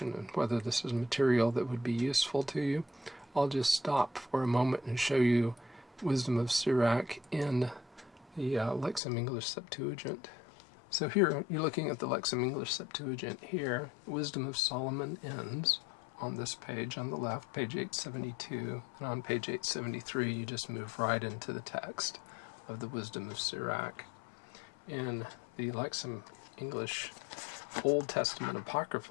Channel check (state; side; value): drops out; right; at 9.0 s